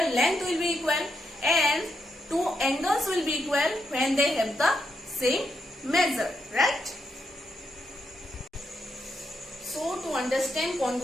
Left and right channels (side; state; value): both; normal; correlation 0.82